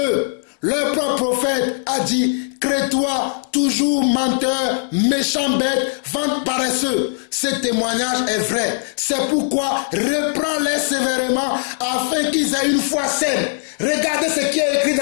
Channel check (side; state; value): right; silent; 66 dB below the other